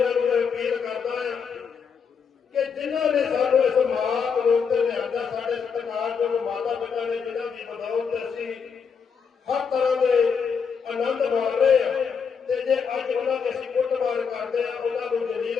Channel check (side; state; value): right; quieter; 6.2 dB